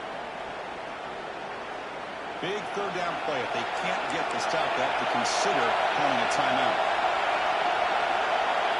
Big 3rd down play. If they can't get the stop, they have to consider calling a timeout.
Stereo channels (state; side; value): identical; both; correlation 1.00